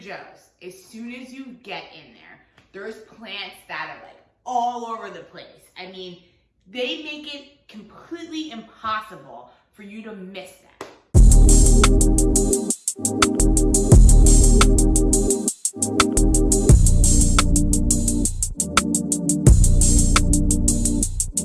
as soon as you get in there, there's plants that are like all over the place. I mean, they make it completely impossible for you to miss them.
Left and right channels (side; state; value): both; identical; correlation 1.00